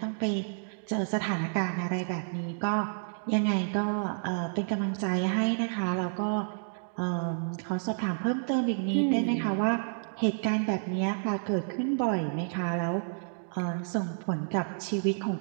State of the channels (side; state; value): left; silent; digital silence